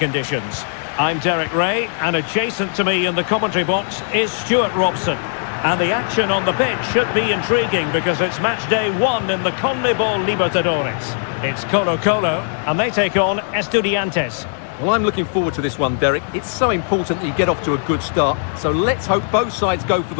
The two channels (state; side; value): silent; right; 60 dB below the other